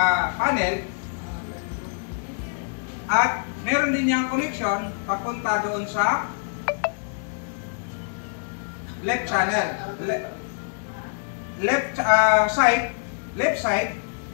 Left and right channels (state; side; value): silent; right; 62 dB below the other